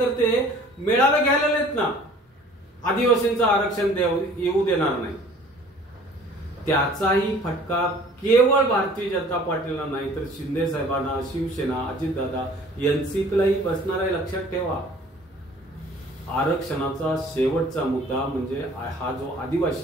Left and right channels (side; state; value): both; normal; correlation 0.51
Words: मेळावे घ्यायला नाहीत ना. आदिवासींचं आरक्षण येऊ देणार नाही. त्याचाही फटका केवळ भारतीय जनता पार्टीला नाही तर शिंदे साहेबांना, शिवसेना, अजितदादा, एनसीपीलाही बसणार आहे. लक्षात ठेवा. आरक्षणाचा शेवटचा मुद्दा म्हणजे हा जो